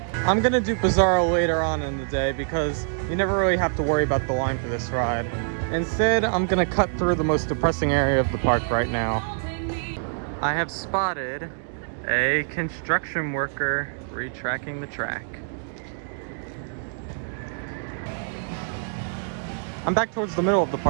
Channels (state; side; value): silent; left; digital silence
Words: I'm gonna do Bizarro later on in the day because you never really have to worry about the line for this ride. Instead, I'm gonna cut through the most depressing area of the park right now. I have spotted a construction worker retracking the track. I'm back towards the middle of the